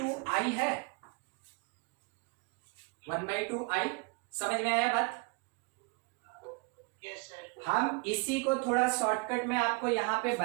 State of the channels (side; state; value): left; quieter; 30.3 dB